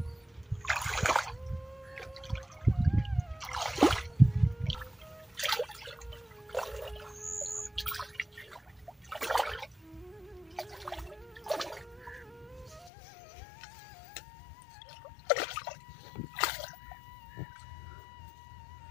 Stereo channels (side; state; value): right; drops out; at 12.9 s